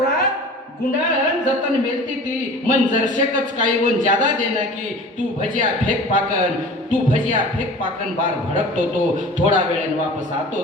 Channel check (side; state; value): both; normal; correlation 0.41